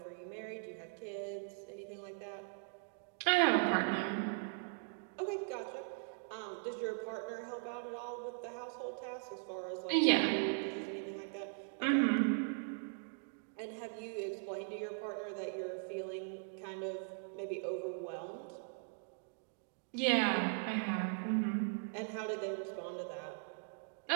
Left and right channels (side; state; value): left; silent; digital silence